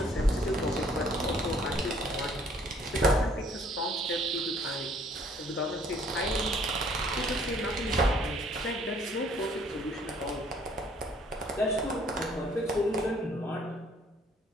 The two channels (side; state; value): both; normal; correlation 0.61